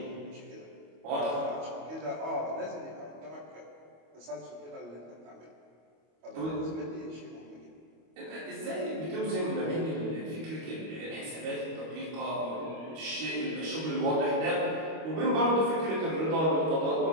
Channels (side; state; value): left; late; 25 ms